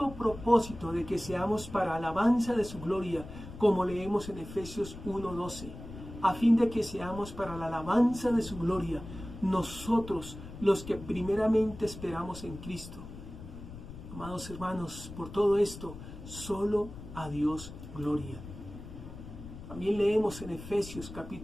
propósito de que seamos para alabanza de su gloria, como leemos en Efesios 1:12, a fin de que seamos para la alabanza de su gloria, nosotros los que primeramente esperamos en Cristo. Amados hermanos, por todo esto, solo a Dios gloria. También leemos en Efesios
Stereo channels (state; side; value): noise; left; rumble, 13 dB below the sound